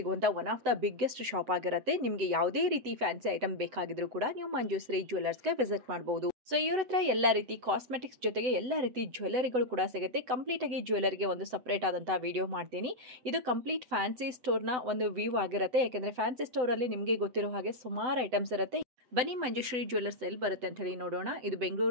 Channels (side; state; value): left; late; 7.9 ms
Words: one of the biggest shop ಆಗಿರುತ್ತೆ. ನಿಮಗೆ ಯಾವುದೇ ರೀತಿ ಫ್ಯಾನ್ಸಿ ಐಟಮ್ ಬೇಕಾಗಿದ್ರೂ ಕೂಡ ನೀವು ಮಂಜುಶ್ರೀ ಜ್ಯುವೆಲ್ಲರ್ಸ್ಗೆ ವಿಸಿಟ್ ಮಾಡಬಹುದು. ಸೊ ಇವ್ರ ಹತ್ರ ಎಲ್ಲ ರೀತಿ ಕಾಸ್ಮೆಟಿಕ್ಸ್ ಜೊತೆಗೆ ಎಲ್ಲ ರೀತಿ ಜ್ಯುವೆಲ್ಲರಿಗಳು ಕೂಡ ಸಿಗುತ್ತೆ. ಕಂಪ್ಲೀಟ್ ಆಗಿ ಜ್ಯುವೆಲ್ಲರಿಗೆ ಒಂದು ಸಪ್ರೇಟ್ ಆದಂತಹ ವಿಡಿಯೋ ಮಾಡ್ತೀನಿ. ಇದು ಕಂಪ್ಲೀಟ್ ಫ್ಯಾನ್ಸಿ ಸ್ಟೋರ್ನ ಒಂದು ವ್ಯೂ ಆಗಿರುತ್ತೆ. ಯಾಕೆಂದ್ರೆ ಫ್ಯಾನ್ಸಿ ಸ್ಟೋರ್ ಅಲ್ಲಿ ನಿಮಗೆ ಗೊತ್ತಿರೋ ಹಾಗೆ ಸುಮಾರು ಐಟಮ್ಸ್ ಇರುತ್ತೆ. ಬನ್ನಿ ಮಂಜುಶ್ರೀ ಜ್ಯುವೆಲ್ಲರ್ಸ್ ಎಲ್ಲಿ ಬರುತ್ತೆ ಅಂತ ಹೇಳಿ ನೋಡೋಣ. ಇದು